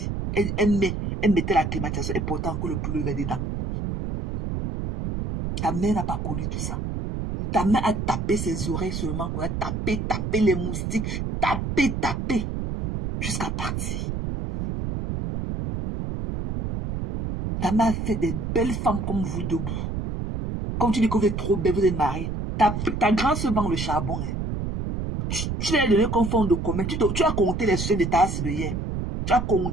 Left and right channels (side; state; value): right; noise; rumble, 3 dB below the sound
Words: Elle mettait la climatisation et portait encore le plus levé dedans. Ta mère n'a pas connu tout ça. Ta mère a tapé ses oreilles seulement. A tapé les moustiques. Tapé. Jusqu'à partir. Ta mère a fait des belles femmes comme vous debout. Comme tu dis que vous êtes trop belle, vous êtes mariée. Ta grand se vend le charbon. Hein. Tu lui as donné comme fond de commun. Tu as compté les sujets de ta assiette de hier. Tu as